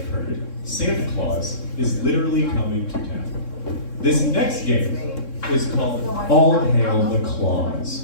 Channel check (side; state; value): right; late; 3.7 ms